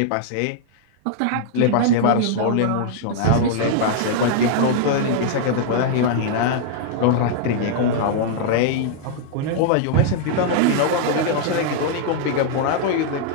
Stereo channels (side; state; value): both; different; correlation -0.01